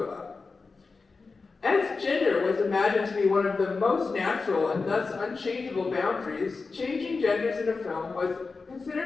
As gender was imagined to be one of the most natural and thus unchangeable boundaries, changing genders in a film was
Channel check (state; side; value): quieter; right; 4.3 dB